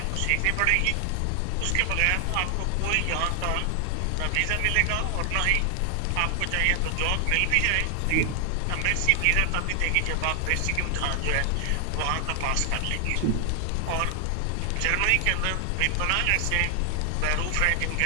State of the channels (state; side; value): different; both; correlation 0.00